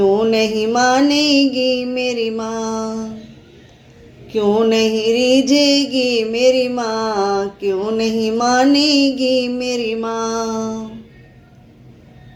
नहीं मानेगी मेरी माँ, क्यों नहीं रीझेगी मेरी माँ, क्यों नहीं मानेगी मेरी माँ।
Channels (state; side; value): identical; both; correlation 1.00